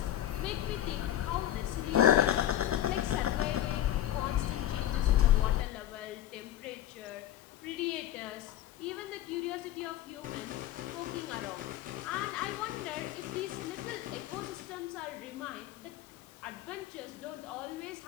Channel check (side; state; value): right; quieter; 12.3 dB